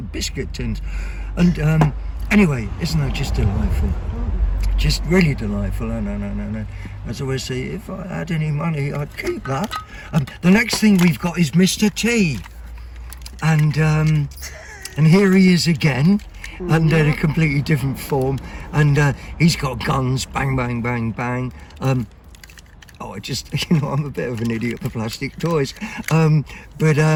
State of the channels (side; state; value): both; identical; correlation 1.00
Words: biscuit tins. And anyway, isn't that just delightful? Just really delightful. No. As I always say, if I had any money, I'd keep that. The next thing we've got is Mr. T. And here he is again, under a completely different form. And he's got guns, bang, bang, bang, bang. I'm a bit of an idiot for plastic toys.